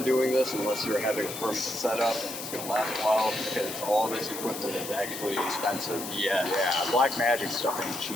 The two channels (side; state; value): left; noise; hiss, 8 dB below the sound